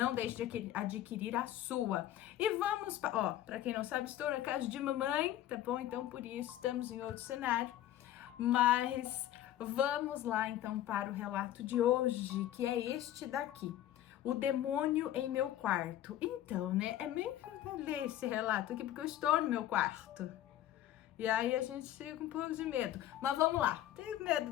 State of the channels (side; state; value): right; quieter; 12.8 dB